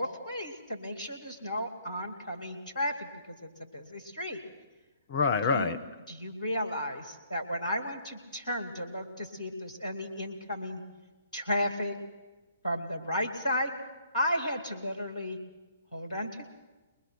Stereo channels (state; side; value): inverted; both; correlation -0.65